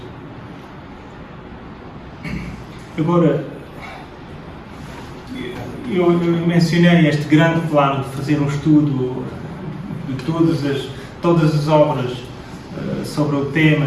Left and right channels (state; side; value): identical; both; correlation 1.00